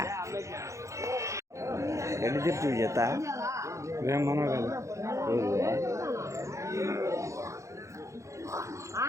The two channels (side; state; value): left; late; 0.15 ms